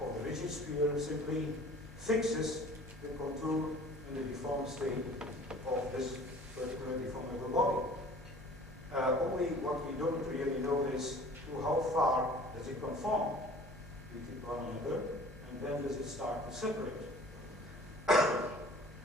the rigid sphere simply fixes the contour in the deformed state of this particular deformable body. Only what we don't really know is to how far does it conform with one another, and when does it start to separate.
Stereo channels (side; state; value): both; normal; correlation 0.47